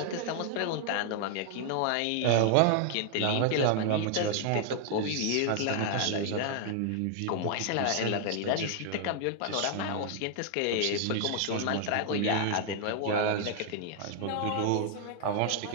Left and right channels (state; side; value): different; both; correlation 0.00